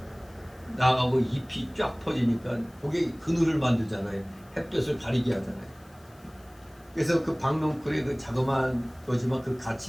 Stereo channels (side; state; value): left; noise; hiss, 29 dB below the sound